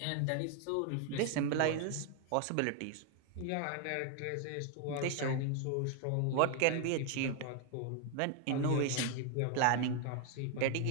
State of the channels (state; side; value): different; both; correlation 0.01